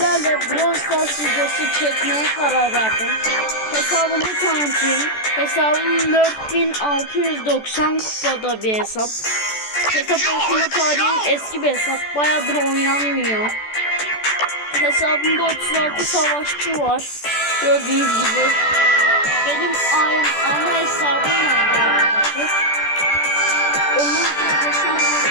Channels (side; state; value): right; late; 14 ms